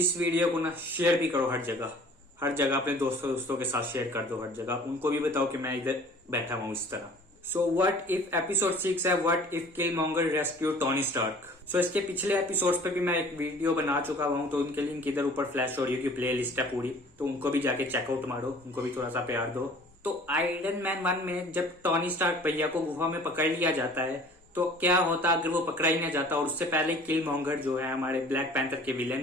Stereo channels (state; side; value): normal; both; correlation 0.48